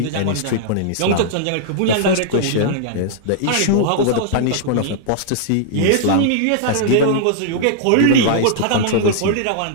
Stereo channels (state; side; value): different; both; correlation -0.01